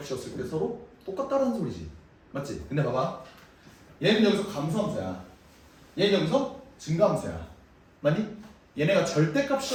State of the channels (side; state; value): both; identical; correlation 1.00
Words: 때 서로 똑같다는 소리지. 맞지? 근데 봐봐. 얘는 여기서 감소함수야. 얘는 여기서 증가함수야. 맞니? 얘네가